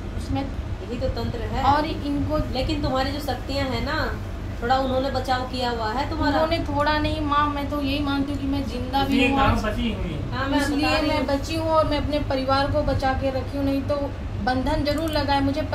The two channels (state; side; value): identical; both; correlation 1.00